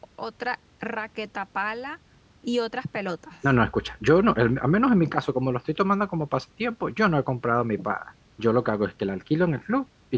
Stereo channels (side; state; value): both; identical; correlation 1.00